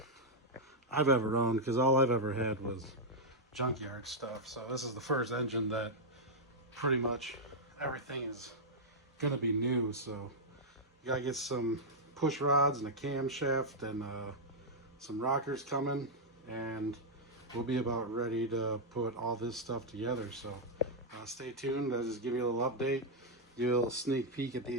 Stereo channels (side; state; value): both; normal; correlation -0.04